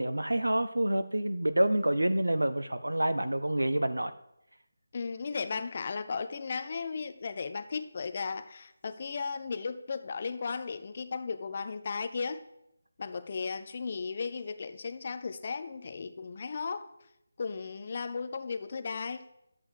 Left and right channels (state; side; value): inverted; both; correlation -0.94